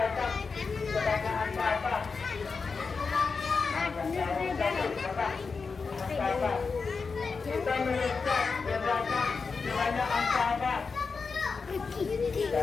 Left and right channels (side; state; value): right; quieter; 4.8 dB